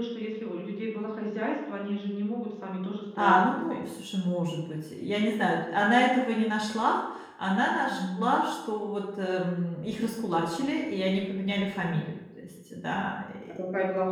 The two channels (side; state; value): both; identical; correlation 1.00